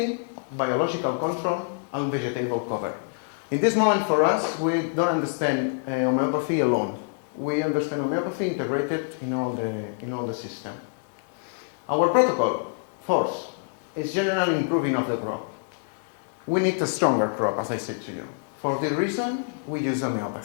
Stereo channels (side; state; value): right; silent; digital silence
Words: biological control, and vegetable cover. In this moment, for us, we don't understand homeopathy alone. We understand homeopathy integrated in all the system. Our protocol, fourth, is general improving of the crop. We need a stronger crop, as I said to you. For this reason, we use